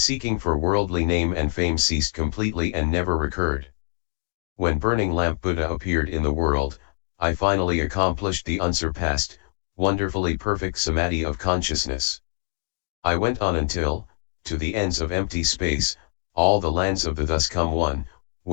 for worldly name and fame ceased completely and never recurred. When Burning Lamp Buddha appeared in the world, I finally accomplished the unsurpassed, wonderfully perfect Samadhi of consciousness. I went on until, to the ends of empty space, all the lands of the thus come one,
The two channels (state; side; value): silent; right; digital silence